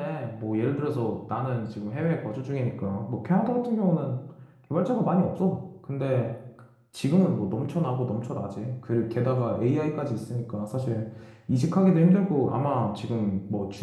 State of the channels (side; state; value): both; identical; correlation 1.00